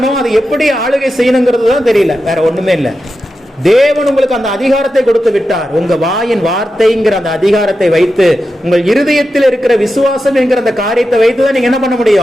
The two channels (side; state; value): both; normal; correlation 0.90